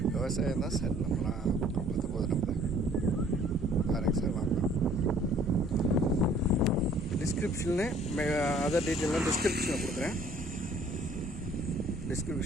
விவசாயம் தான் சார் நம்மளாம் பார்த்து போகுது. நம்ம பாருங்க சார், வாங்கலாம். டிஸ்கிரிப்ஷனில் அதர் டீட்டெயிலாம் டிஸ்கிரிப்ஷனில் கொடுக்குறேன்.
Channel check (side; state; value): both; normal; correlation 0.56